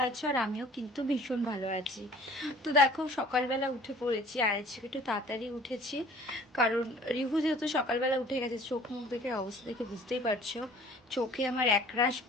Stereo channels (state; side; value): normal; both; correlation 0.50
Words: আছো, আর আমিও কিন্তু ভীষণ ভালো আছি। তো দেখো, সকালবেলা উঠে পড়েছি, আর আজকে একটু তাড়াতাড়ি উঠেছি, কারণ রিভু যেহেতু সকালবেলা উঠে গেছে। চোখ মুখ দেখে অবস্থা দেখে বুঝতেই পারছো, চোখে আমার একরাশ